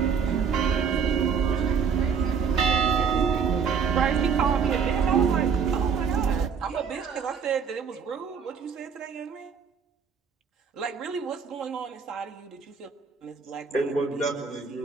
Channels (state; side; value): quieter; left; 6.2 dB